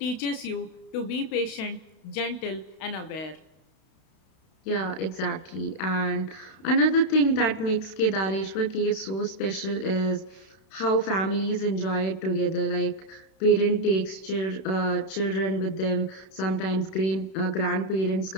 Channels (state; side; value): late; right; 32 ms